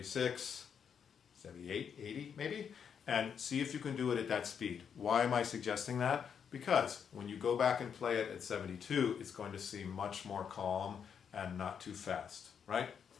78, 80 maybe, and see if you can do it at that speed. Why am I suggesting that? Because when you go back and play it at 72, it's going to seem much more calm and not too fast, right?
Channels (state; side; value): quieter; right; 7.4 dB